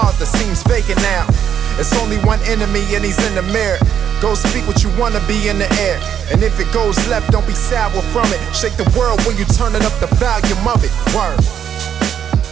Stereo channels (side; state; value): left; quieter; 8.9 dB